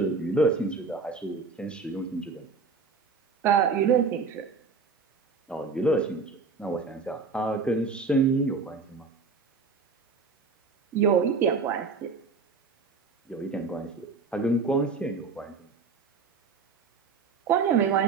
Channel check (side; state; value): left; quieter; 4.7 dB